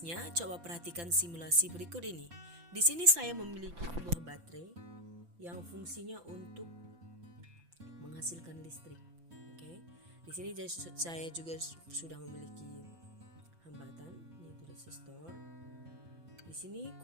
coba perhatikan simulasi berikut ini. Di sini saya memiliki sebuah baterai yang fungsinya untuk menghasilkan listrik. Oke. Di sini saya juga sudah memiliki hambatan, yaitu resistor. Di sini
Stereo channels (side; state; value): left; late; 5.9 ms